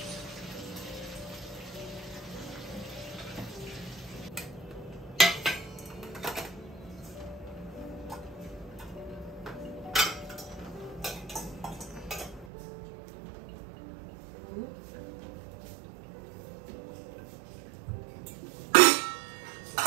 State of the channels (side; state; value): left; drops out; at 12.5 s